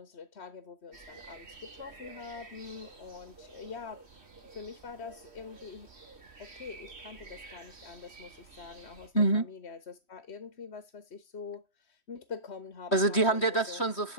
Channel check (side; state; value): right; late; 3.1 ms